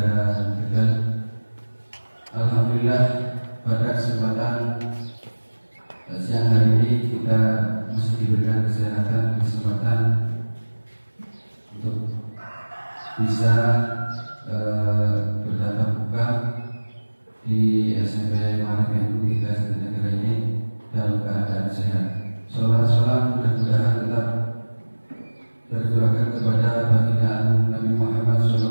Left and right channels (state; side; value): inverted; both; correlation -1.00